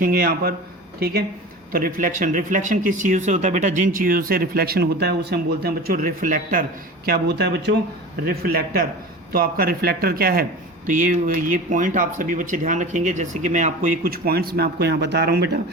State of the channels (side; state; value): both; normal; correlation 0.34